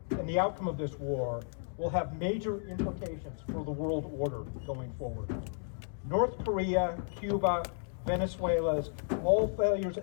and the outcome of this war will have major implications for the world order going forward. North Korea, Cuba, Venezuela's all failures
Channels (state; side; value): silent; right; digital silence